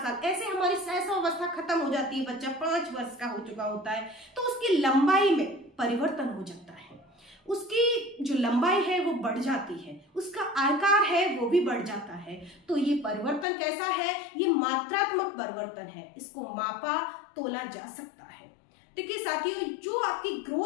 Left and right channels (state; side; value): drops out; right; at 13.5 s